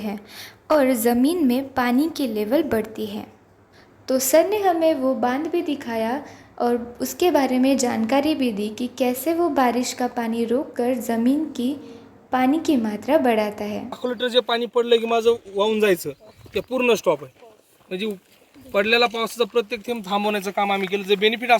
और ज़मीन में पानी की लेवल बढ़ती है। तो सर ने हमें वो बांध भी दिखाया और उसके बारे में जानकारी भी दी कि कैसे वो बारिश का पाणी रोककर ज़मीन की पाणी की मात्रा बढ़ाता है। 1 लिटर जे पाणी पडलं की माझं वाहून जायचं ते पूर्ण स्टॉप आहे। म्हणजे पडलेला पावसाचा प्रत्येक थेंब थांबवण्याचं काम आम्ही केलं। जे बेनिफिट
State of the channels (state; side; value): identical; both; correlation 1.00